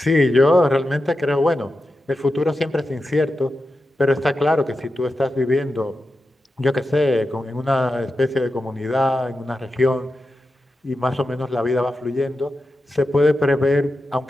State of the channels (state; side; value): normal; both; correlation 0.90